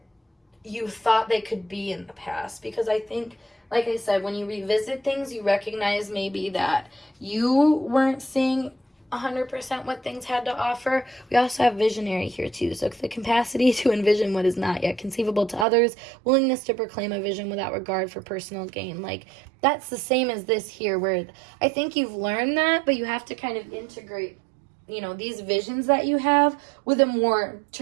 you thought they could be in the past. Because I think, like I said, when you revisit things, you recognize maybe that you weren't seeing 100% what things had to offer. We also have visionary here too, so the capacity to envision what is not yet conceivable to others, willingness to proclaim a vision without regard for personal gain. Like that's the same as this here, where I think you've learned that, but you have to kind of integrate these visions that you have with a more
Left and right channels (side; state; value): left; drops out; at 15.7 s